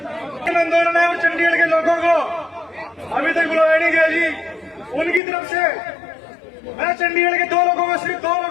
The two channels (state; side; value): drops out; right; at 5.2 s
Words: आंदोलन है और चंडीगढ़ के लोगों को अभी तक बुलाया नहीं गया जी। उनकी तरफ से मैं चंडीगढ़ के 2 लोगों को, सिर्फ 2 लोगों